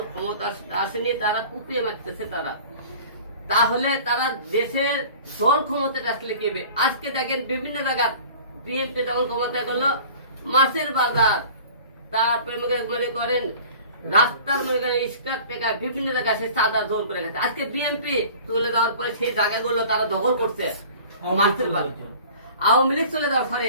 ক্ষমতা আসেনি, তারা কুপিয়ে মারতেছে তারা, তাহলে তারা দেশের দল ক্ষমতা আসলে কি হবে? আজকে দেখেন বিভিন্ন জায়গায় বিএনপি যখন ক্ষমতা করলো, মাছের বাজার, তারপরে মনে করেন রাস্তার মনে করেন স্ক্র্যাপ টেকা বিভিন্ন জায়গায় সে চাঁদা জোর করে গেছে। আজকে বিএনপি তুলে দেওয়ার পরে সেই জায়গাগুলো তারা দখল করছে মাছের বাজার। আওয়ামী লীগ চলে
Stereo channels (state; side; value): inverted; both; correlation -0.44